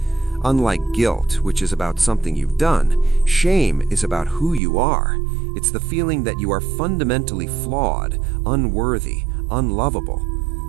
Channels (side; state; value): left; drops out; at 4.6 s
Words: Unlike guilt, which is about something you've done, shame is about who you are. It's the feeling that you are fundamentally flawed, unworthy, unlovable.